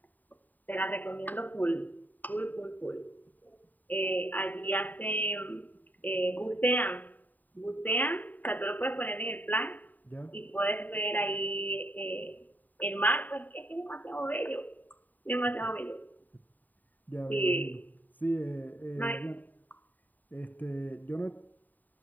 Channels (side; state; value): right; late; 0.085 ms